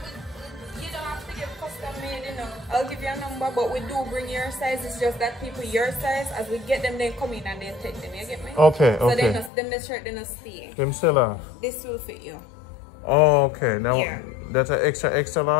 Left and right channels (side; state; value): right; drops out; at 9.5 s